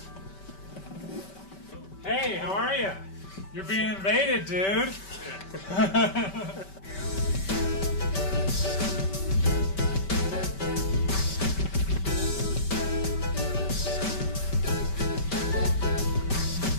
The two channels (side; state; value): right; late; 5.2 ms